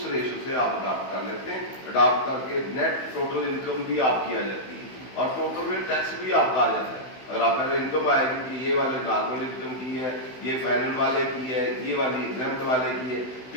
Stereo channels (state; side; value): late; right; 16 ms